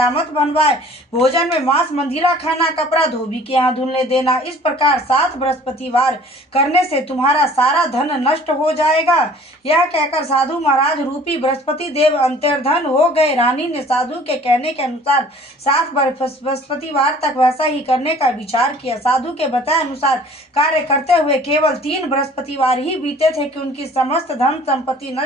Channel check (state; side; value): normal; both; correlation 0.51